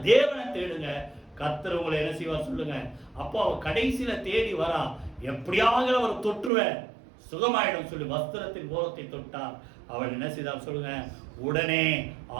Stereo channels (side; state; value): left; drops out; at 6.5 s